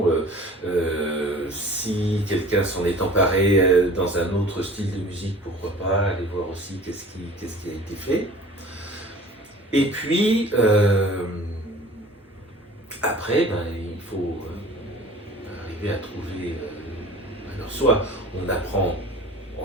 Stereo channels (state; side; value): normal; both; correlation 0.45